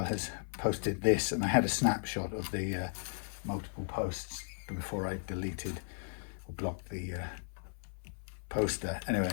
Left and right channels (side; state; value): right; silent; 54 dB below the other